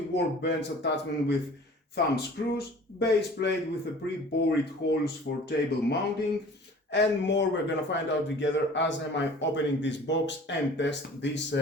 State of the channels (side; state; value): both; normal; correlation 0.46